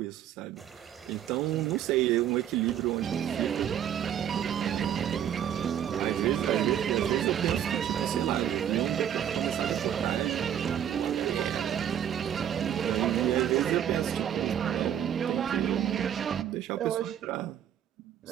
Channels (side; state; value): left; quieter; 9.9 dB